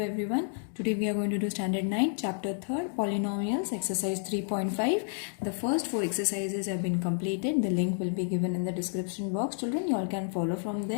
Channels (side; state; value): right; silent; 58 dB below the other